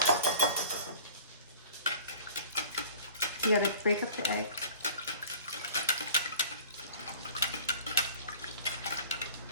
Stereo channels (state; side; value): inverted; both; correlation -0.45